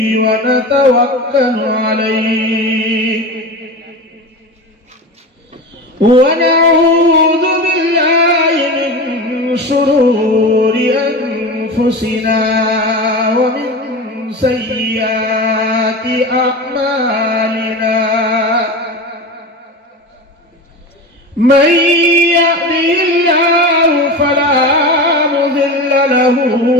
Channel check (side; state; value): both; normal; correlation 0.27